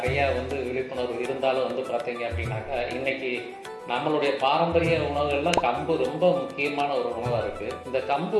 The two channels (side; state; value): both; identical; correlation 1.00